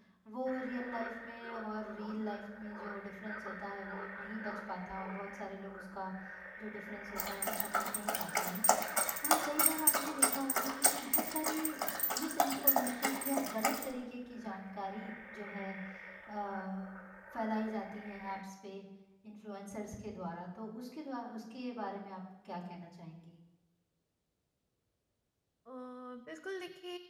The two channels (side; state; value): both; identical; correlation 1.00